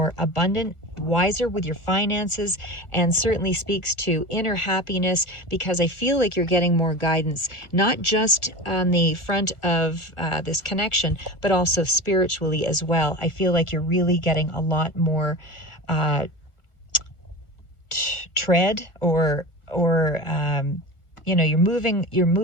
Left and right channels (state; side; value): late; right; 1.4 ms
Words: abundant, wiser with your finances, and certainly speaks to inner happiness, because I feel like you're getting more guidance, not just on the front of this connection, but also spiritually as well. I feel like you're really getting a lot more tread, or you know, you're